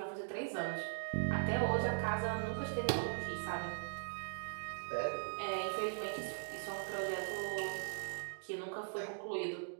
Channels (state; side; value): silent; left; digital silence